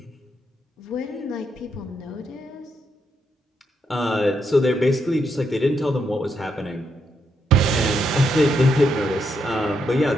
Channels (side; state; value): both; normal; correlation 0.79